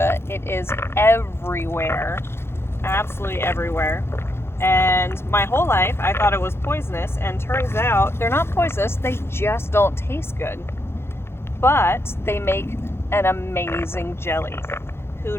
It is everywhere, absolutely everywhere. And my whole life I thought it was poisonous, and turns out they're not poisonous, they just don't taste good. But they make an amazing jelly. Who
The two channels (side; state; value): right; late; 0.12 ms